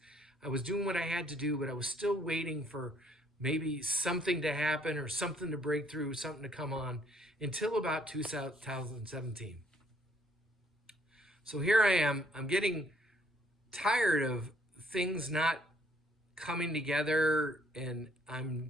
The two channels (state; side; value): normal; both; correlation 0.66